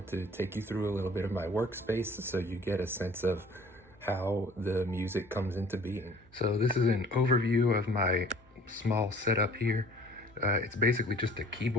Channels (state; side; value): normal; both; correlation 0.51